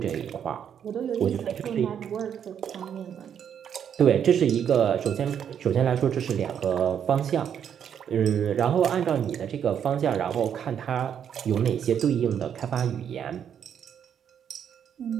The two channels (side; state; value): left; quieter; 8.6 dB